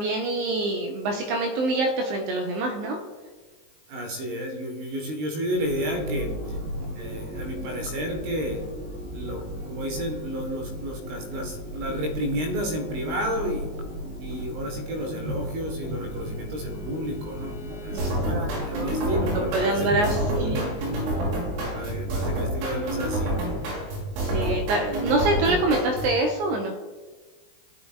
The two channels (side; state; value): left; late; 19 ms